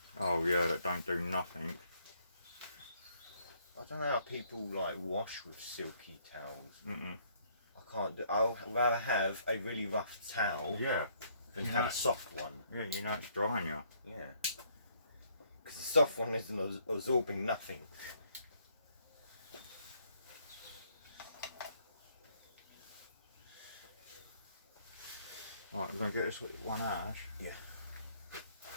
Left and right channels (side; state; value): both; inverted; correlation -0.67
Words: Oh yeah, that don't do nothing. I don't know how people like wash with silky towels. Mm-mm. I can't do. I'll rather have a really rough towel Yeah. than have a soft one. Yeah, you know it's drying you. Yeah. Because the soft one isn't absorbing nothing. Right, we're going to get this one out, Ash. Yeah.